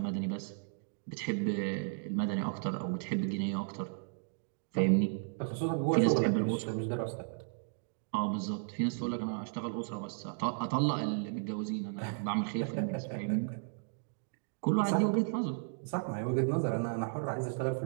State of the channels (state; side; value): silent; left; digital silence